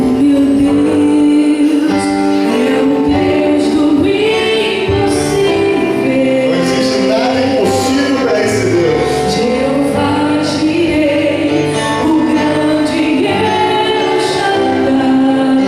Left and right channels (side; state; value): both; identical; correlation 1.00